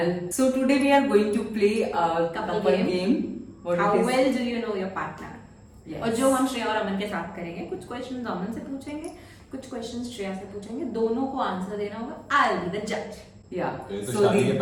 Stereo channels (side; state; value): both; identical; correlation 1.00